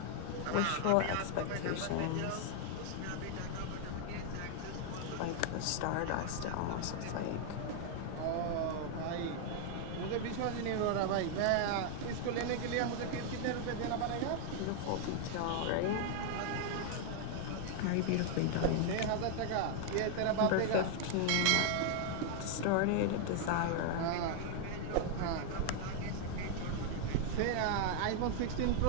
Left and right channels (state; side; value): different; both; correlation 0.00